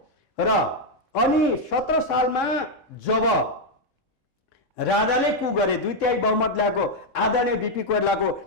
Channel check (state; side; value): normal; both; correlation 0.01